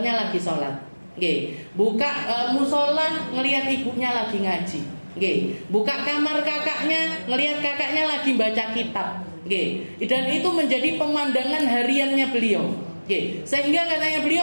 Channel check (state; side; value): inverted; both; correlation -1.00